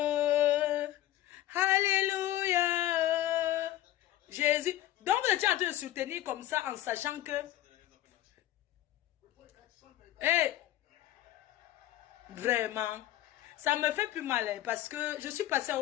Alléluia. Jésus. Donc, tu es en train de soutenir comme ça en sachant que... Hey, vraiment, ça me fait plus mal parce que je suis passée à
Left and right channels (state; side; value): quieter; right; 14.0 dB